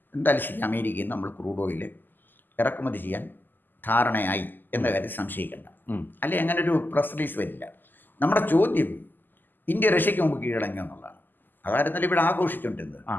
എന്തായാലും ശരി അമേരിക്കയിൽ നിന്ന് നമ്മൾ ക്രൂഡ് ഓയിൽ ഇറക്കുമതി ചെയ്യാൻ ധാരണയായി എന്ന കാര്യം സംശയിക്കേണ്ട. അല്ലെ അങ്ങനെ ഒരു പ്രസ് റിലീസ് വരില്ല. നമ്മുടെ ചോദ്യം ഇന്ത്യ റഷ്യക്ക് മുമ്പ് കീഴടങ്ങി എന്നുള്ളതാണ്. അതായിരുന്നല്ലോ ഇവിടെ ആഘോഷിച്ചുകൊണ്ടിരുന്നത്.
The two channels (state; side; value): late; right; 0.090 ms